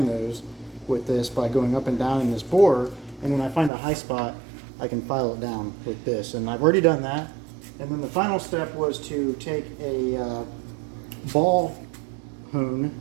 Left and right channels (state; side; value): drops out; left; at 3.7 s